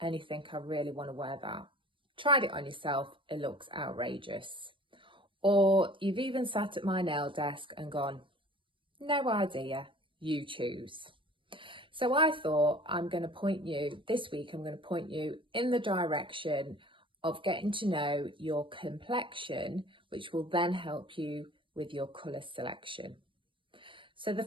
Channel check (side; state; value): left; late; 0.25 ms